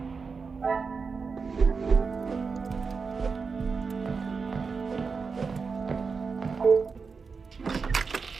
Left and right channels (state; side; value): quieter; left; 5.0 dB